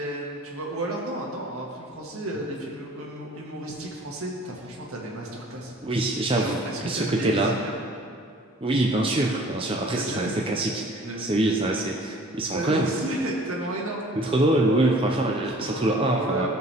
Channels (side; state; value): both; normal; correlation 0.50